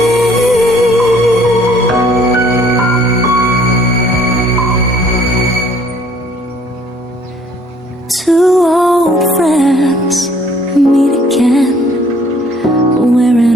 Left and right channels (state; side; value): normal; both; correlation 0.59